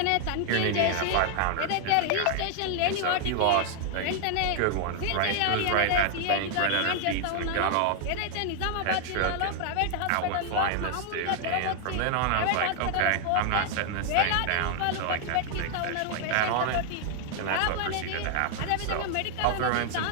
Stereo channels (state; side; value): different; both; correlation 0.00